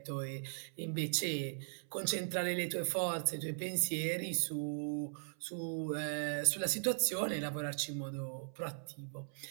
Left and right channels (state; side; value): silent; left; 52 dB below the other